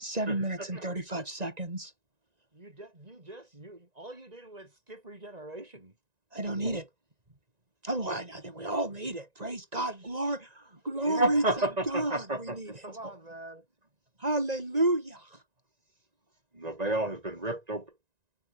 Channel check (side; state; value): left; late; 1.9 ms